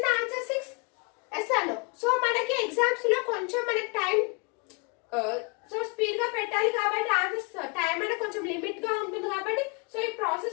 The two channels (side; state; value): right; quieter; 32.7 dB